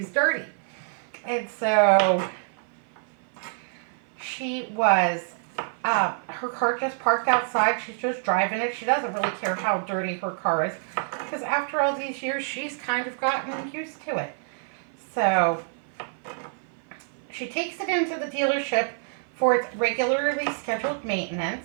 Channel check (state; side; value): silent; left; 55 dB below the other